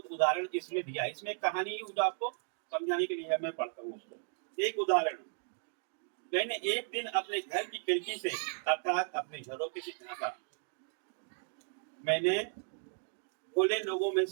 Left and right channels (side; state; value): left; silent; 54 dB below the other